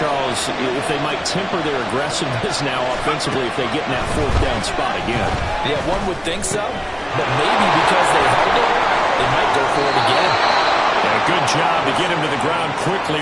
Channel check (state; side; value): identical; both; correlation 1.00